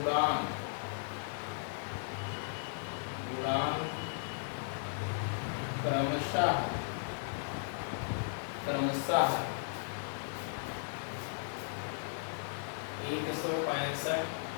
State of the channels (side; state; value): right; silent; 54 dB below the other